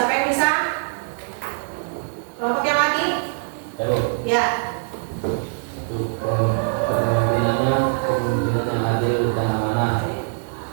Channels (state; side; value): silent; left; 62 dB below the other